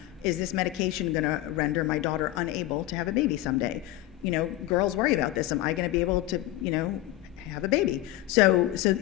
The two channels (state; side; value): quieter; right; 15.3 dB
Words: is this medication going to render my daughter unable to have a baby someday? Girls worry about this. Am I going to be able to, have a baby? So